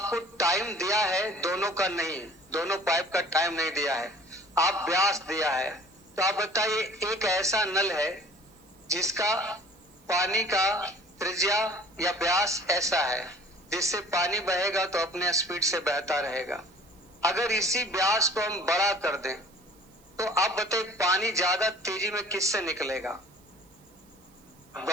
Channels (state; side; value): noise; right; hiss, 29 dB below the sound